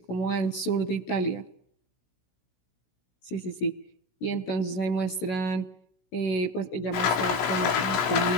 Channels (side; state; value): right; late; 16 ms